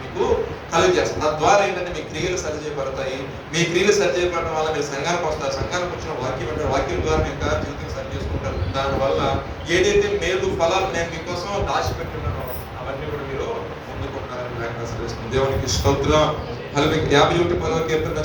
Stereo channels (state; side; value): identical; both; correlation 1.00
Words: మీకు కలిగజేస్తాను. తద్వారా ఏంటంటే మీ క్రియలు సరిచేయబడతాయి. మీ క్రియలు సరిచేయబడటం వల్ల మీరు సంఘానికి వస్తారు. సంఘానికి వచ్చిన వాక్యం ద్వారా మీ యొక్క జీవితం సరి చేసుకుంటారు. దానివల్ల ఏదైతే మేలు ఫలాలు నేను మీకోసం దాచిపెట్టున్నానో అవన్నీ కూడా మీరు పొందుకుంటారని లేఖనం సెలవిస్తుంది. దేవునికి స్తోత్రం. 51:10 కీర్తన